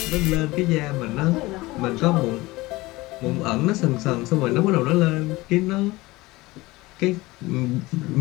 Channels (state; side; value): quieter; right; 20.6 dB